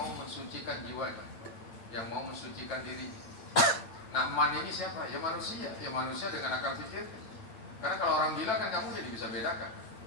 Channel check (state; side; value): late; right; 8.9 ms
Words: mensucikan jiwanya, yang mau mensucikan diri. Nah, man ini siapa? Ya manusia dengan akal pikir. Karena kalau orang gila kan kamu jadi bisa bedakan,